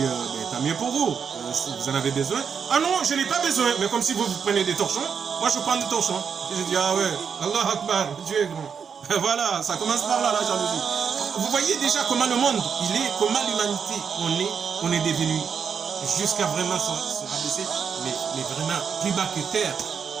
mais tant mieux pour vous. Si vous en avez besoin. Ah non, je n'ai pas besoin. Mais comme si vous prenez des torchons, moi je prends des torchons. Et j'ai dit, ah ouais, Allah Akbar, Dieu est grand. Voilà, ça commence par là, la jalousie. Vous voyez déjà comment le monde, il est, comment l'humanité, on est devenu jusqu'à vraiment se rabaisser, mais vraiment plus bas que terre.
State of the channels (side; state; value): left; quieter; 6.7 dB